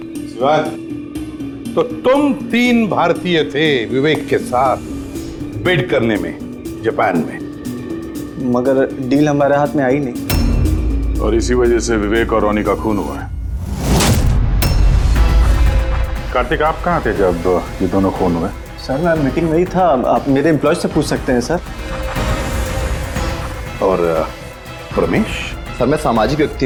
शिवानी, तो तुम 3 भारतीय थे विवेक के साथ बिड करने में जापान में, मगर डील हमारे हाथ में आई नहीं, और इसी वजह से विवेक और रोनी का खून हुआ है। कार्तिक आप कहाँ थे जब ये दोनों खून हुए? सर मैं मीटिंग में ही था, आप मेरे एम्प्लॉय से पूछ सकते हैं सर। और प्रमेश? सर मैं सामाजिक व्यक्ति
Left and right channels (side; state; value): both; identical; correlation 1.00